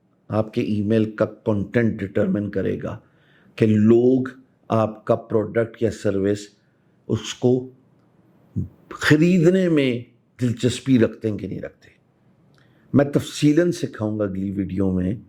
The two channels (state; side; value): identical; both; correlation 1.00